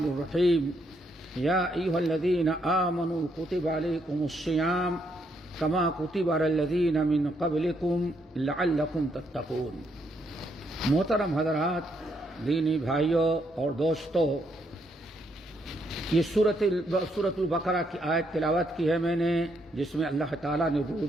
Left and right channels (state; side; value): normal; both; correlation 0.75